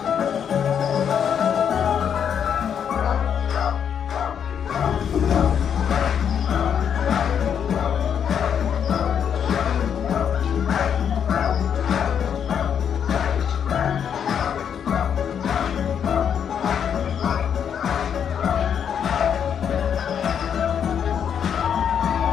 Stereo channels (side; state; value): right; quieter; 8.1 dB